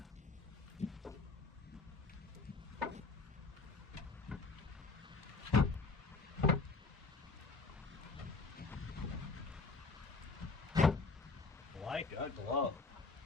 Like a glove.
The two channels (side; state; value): right; quieter; 4.0 dB